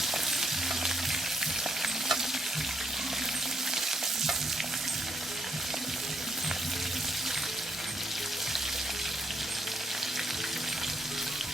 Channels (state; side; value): normal; both; correlation 0.75